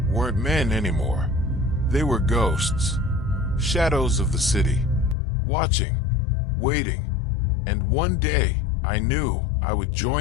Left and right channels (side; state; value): right; drops out; at 5.2 s